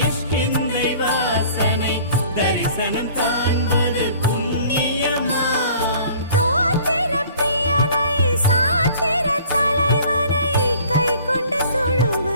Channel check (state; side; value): inverted; both; correlation -0.50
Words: வாசனை தரிசனம் காண்பது புண்ணியமாம். தோத்திர பிரியனை சாத்திர தலைவனை கை கொண்டு